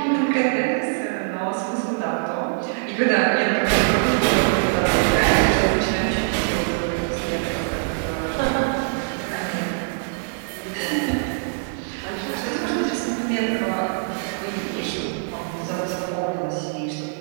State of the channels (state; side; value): silent; left; 63 dB below the other